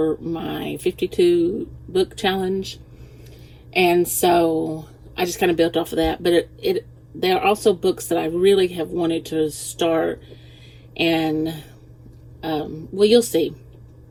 my 52 book challenge. And so I just kind of built off of that. But there are also books that I really have wanted to start, and well, you'll see.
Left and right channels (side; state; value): both; identical; correlation 1.00